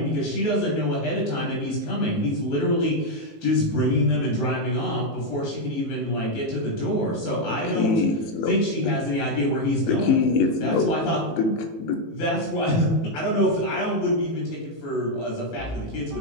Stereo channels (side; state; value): right; late; 18 ms